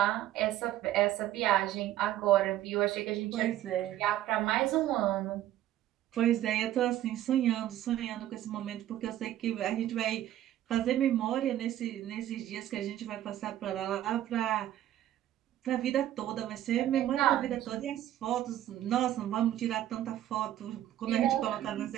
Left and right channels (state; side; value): quieter; left; 12.8 dB